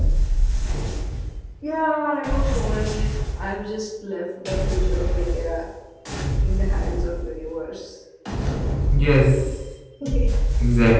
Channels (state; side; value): identical; both; correlation 1.00